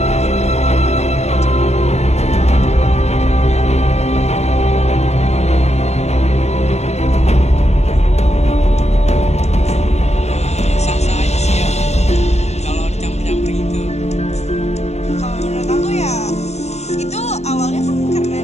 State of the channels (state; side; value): late; right; 0.32 ms